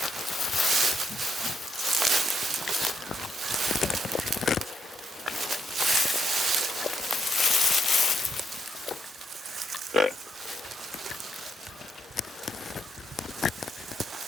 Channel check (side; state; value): both; normal; correlation 0.78